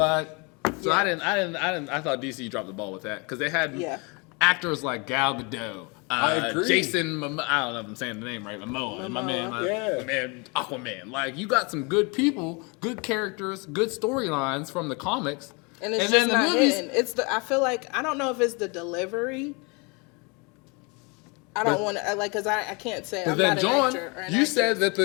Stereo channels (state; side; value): quieter; right; 30.6 dB